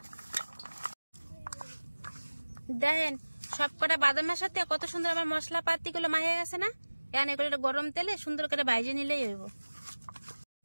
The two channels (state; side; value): inverted; both; correlation -1.00